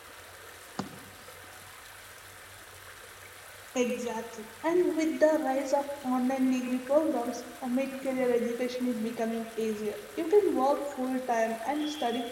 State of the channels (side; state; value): both; identical; correlation 1.00